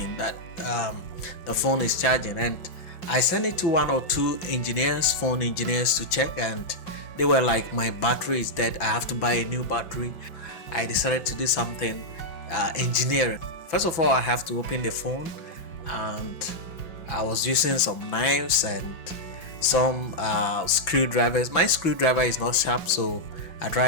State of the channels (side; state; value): right; late; 5.6 ms